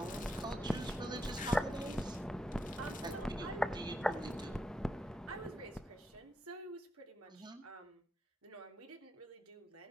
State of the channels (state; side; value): normal; both; correlation 0.83